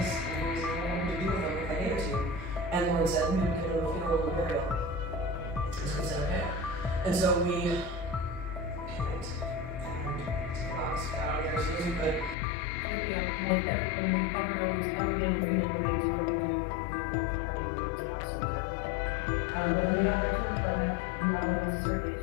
And he was like, well, what would you do with them if I gave it to you? And Lauren said, we would give them a funeral and burial. And so we said, okay. And so we panicked and took the box, got out there as soon as we could, freaking out, calling everyone we've ever known who's ever handled funeral remains. What do we do? What do we do? I mean, we were just absolutely terrified. But when we got back to our apartment, we got all the necessary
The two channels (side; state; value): right; drops out; at 12.4 s